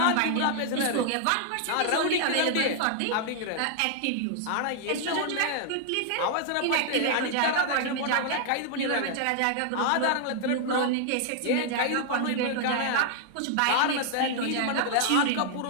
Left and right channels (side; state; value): both; different; correlation 0.00